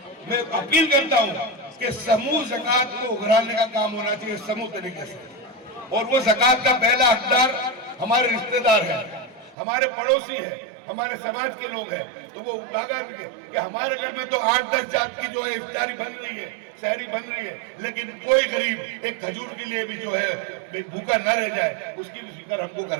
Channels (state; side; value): drops out; left; at 9.6 s